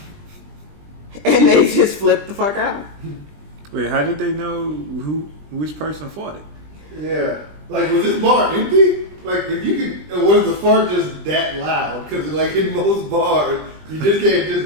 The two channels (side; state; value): left; late; 20 ms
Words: and they just flipped the fuck out. Wait, how did they know which person fought it? Yeah. Like, was this bar empty? Like, if you could, or was the fart just that loud? Because, like, in most bars, you just can't